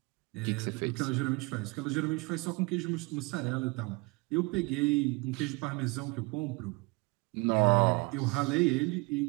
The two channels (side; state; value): left; quieter; 27.0 dB